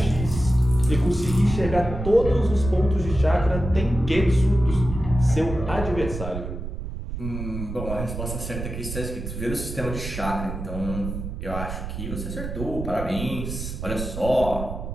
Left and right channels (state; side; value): noise; right; rumble, 7 dB below the sound